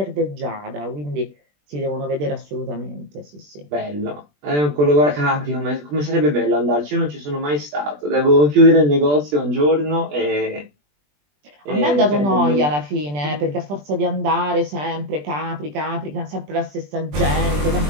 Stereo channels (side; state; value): left; late; 20 ms